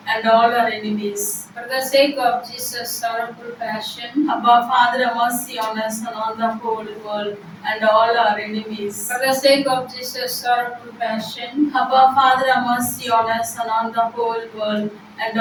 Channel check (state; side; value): identical; both; correlation 1.00